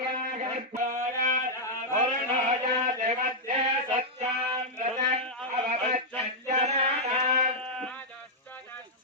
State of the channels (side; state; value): both; normal; correlation -0.05